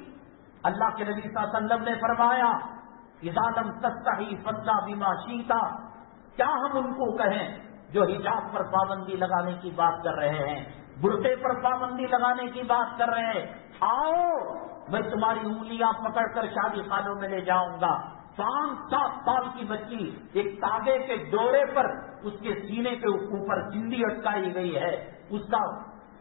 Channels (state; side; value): silent; right; digital silence